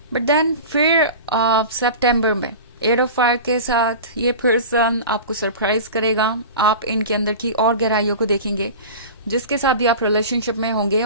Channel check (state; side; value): inverted; both; correlation -0.33